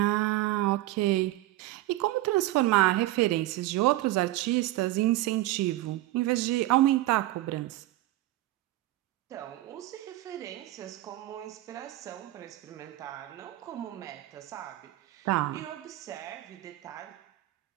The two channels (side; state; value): left; quieter; 16.3 dB